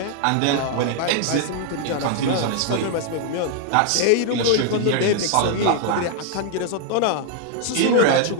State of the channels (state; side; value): different; both; correlation 0.00